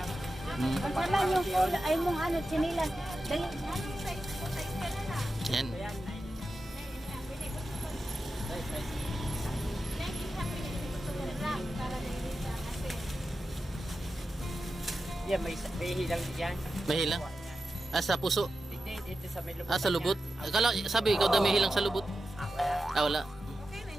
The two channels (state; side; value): normal; both; correlation 0.91